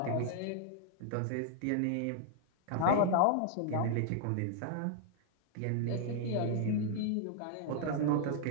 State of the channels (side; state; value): both; different; correlation 0.00